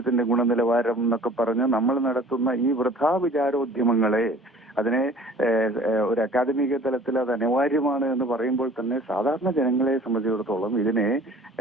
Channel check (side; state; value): both; normal; correlation 0.48